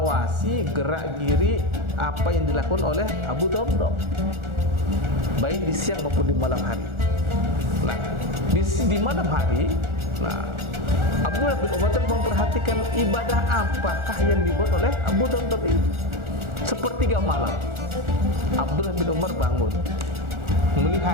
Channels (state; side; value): late; left; 1.4 ms